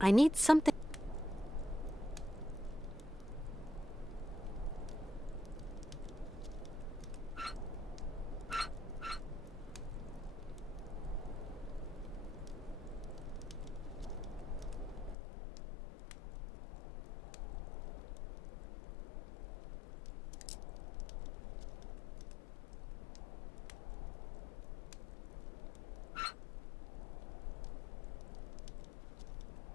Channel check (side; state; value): right; drops out; at 15.2 s